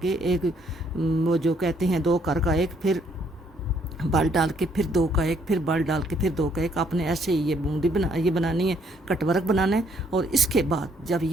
के एक, वो जो कहते हैं 2 कर का 1, फिर बल डाल के फिर 2 का 1, फिर बल डाल के फिर 2 का 1। आपने ऐसे ही ये बूंदी ये बनानी है, कटवर्क बनाना है। और इसके बाद जब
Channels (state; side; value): normal; both; correlation 0.68